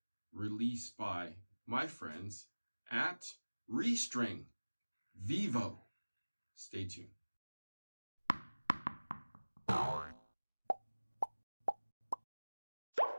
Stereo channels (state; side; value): inverted; both; correlation -1.00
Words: released by my friends at Restring, Vivo. Stay tuned.